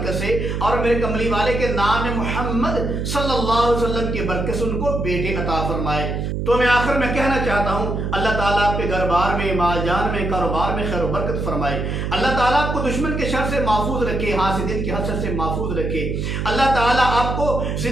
سے اور میرے کملی والے کے نام محمد صلی اللہ علیہ وسلم کی برکت سے ان کو بیٹے عطا فرمائے۔ تو میں آخر میں کہنا چاہتا ہوں، اللہ تعالیٰ آپ کے گھر بار میں، مال جان میں، کاروبار میں خیر و برکت فرمائے۔ اللہ تعالیٰ آپ کو دشمن کے شر سے محفوظ رکھے، حاسدین کے حسد سے محفوظ رکھے۔ اللہ تعالیٰ آپ کو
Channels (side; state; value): right; noise; hum, 2 dB below the sound